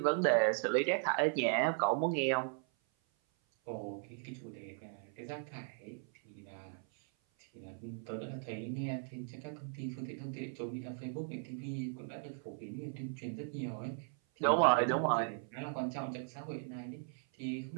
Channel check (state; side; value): silent; left; 53 dB below the other